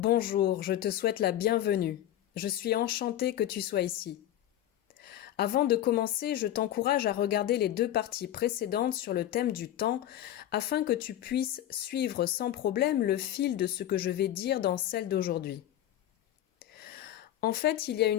je te souhaite la bienvenue. Je suis enchantée que tu sois ici. Avant de commencer, je t'encourage à regarder les deux parties précédentes sur le thème du temps afin que tu puisses suivre sans problème le fil de ce que je vais dire dans celle d'aujourd'hui. En fait, il y a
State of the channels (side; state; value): right; quieter; 12.2 dB